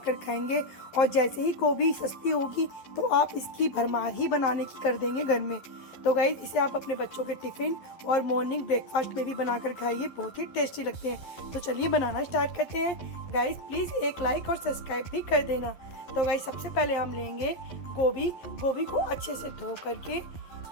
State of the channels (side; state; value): right; late; 11 ms